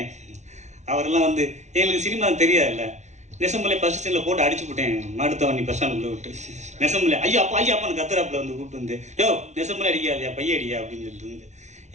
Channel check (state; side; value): late; left; 0.33 ms